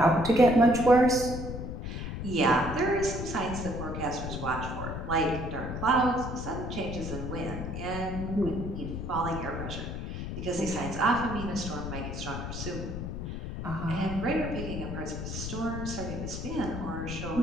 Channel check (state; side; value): noise; left; rumble, 5 dB below the sound